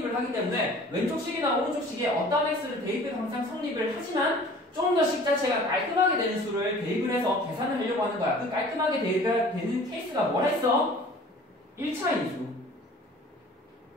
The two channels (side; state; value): both; normal; correlation 0.47